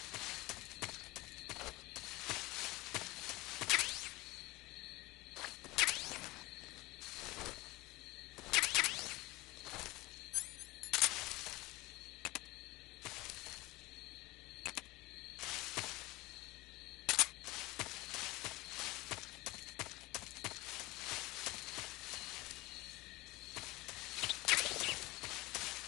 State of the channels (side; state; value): right; quieter; 20.9 dB